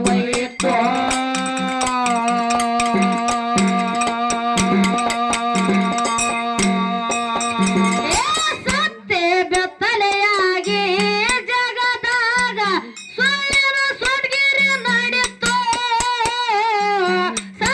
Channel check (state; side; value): identical; both; correlation 1.00